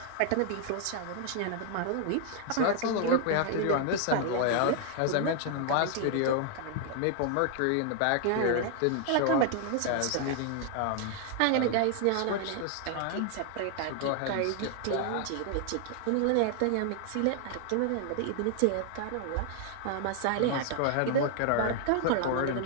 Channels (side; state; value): both; different; correlation 0.00